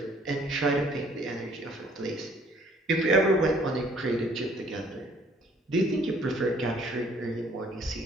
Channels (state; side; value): normal; both; correlation 0.60